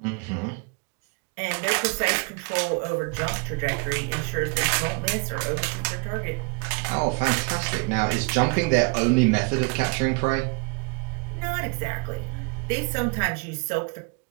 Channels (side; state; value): left; quieter; 32.9 dB